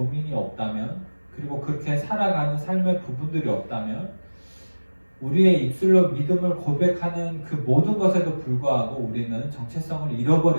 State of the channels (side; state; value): both; inverted; correlation -1.00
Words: 없다면 그리고 그렇게 살아가는 삶의 부분들이 없다면 우리의 입술로 믿음을 고백하는 그 모든 것에도 불구하고 우리는 정체성을